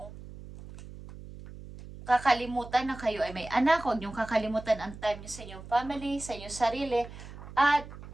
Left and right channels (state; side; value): noise; right; hum, 14 dB below the sound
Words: kakalimutan na kayo ay may anak, huwag niyong kakalimutan ang time niyo sa inyong family, sa inyong sarili, at